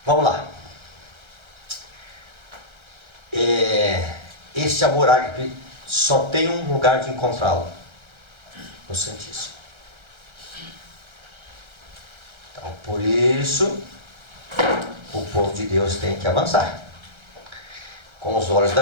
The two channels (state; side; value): late; left; 1.3 ms